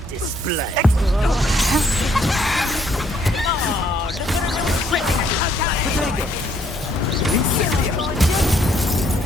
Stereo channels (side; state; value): both; normal; correlation 0.68